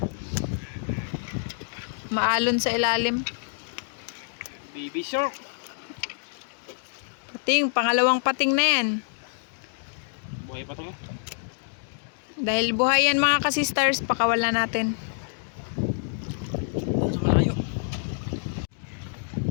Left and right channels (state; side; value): silent; right; digital silence